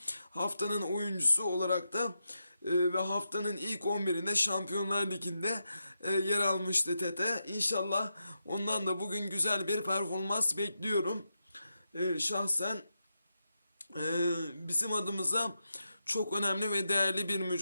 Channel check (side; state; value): both; inverted; correlation -0.87